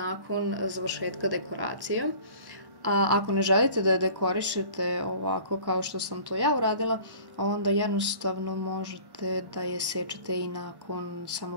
završetka dekoracije. A ako ne želite da je dekorišete ovako kao što sam to ja uradila, onda jednostavno možete da je sečete i nakon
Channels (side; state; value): left; late; 1.1 ms